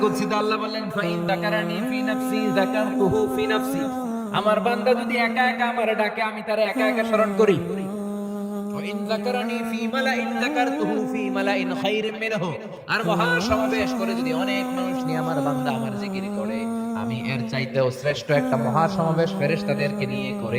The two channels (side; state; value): both; identical; correlation 1.00